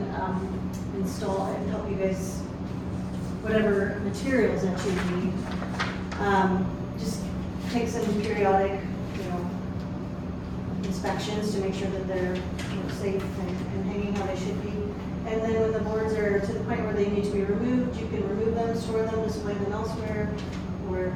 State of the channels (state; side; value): identical; both; correlation 1.00